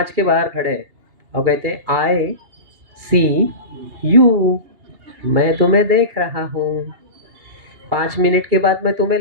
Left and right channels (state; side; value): late; left; 2.8 ms